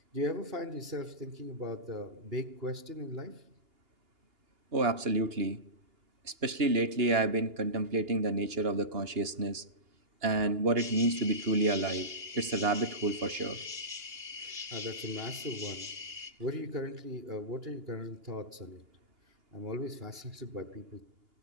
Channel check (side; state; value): left; late; 2.8 ms